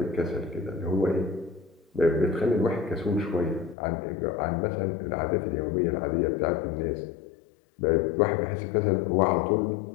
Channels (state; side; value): drops out; right; at 3.8 s